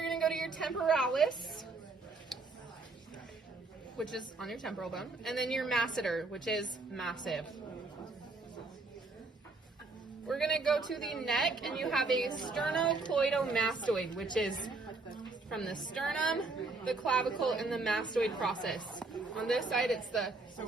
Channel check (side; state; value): left; quieter; 3.6 dB